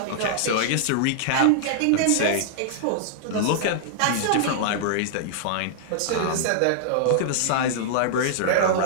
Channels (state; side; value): different; both; correlation -0.02